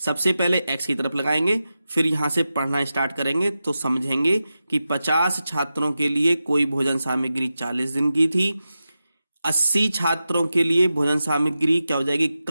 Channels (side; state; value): both; inverted; correlation -0.92